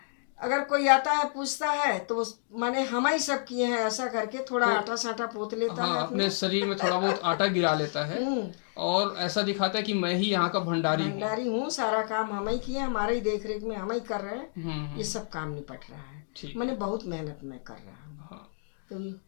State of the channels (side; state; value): right; silent; digital silence